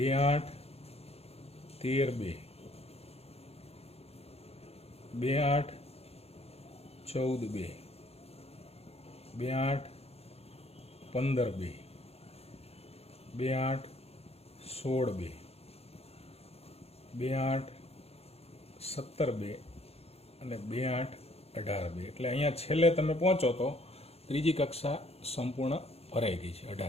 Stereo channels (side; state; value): right; late; 0.29 ms